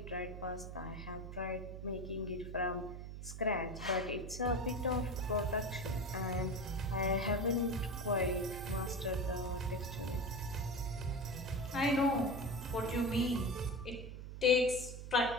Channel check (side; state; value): right; noise; hum, 9 dB below the sound